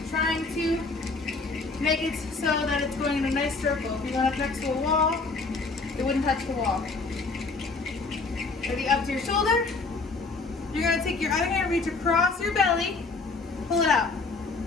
trying to make it so that it's going in a nice circle. If you went up next to a wall, it wouldn't touch the wall. Ready, up to your shoulder. You're gonna take your other hand, reach across your belly, pull it out.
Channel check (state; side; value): quieter; right; 3.9 dB